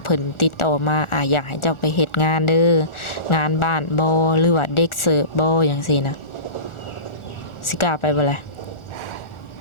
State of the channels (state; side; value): late; right; 1.4 ms